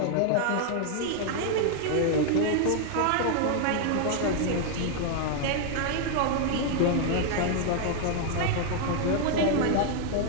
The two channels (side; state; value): both; different; correlation 0.00